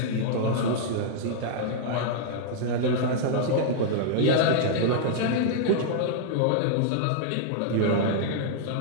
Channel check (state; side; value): different; both; correlation -0.01